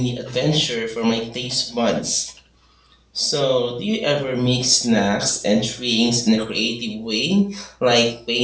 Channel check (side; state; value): both; identical; correlation 1.00